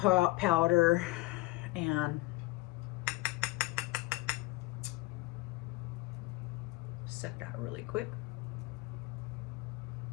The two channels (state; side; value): quieter; right; 20.5 dB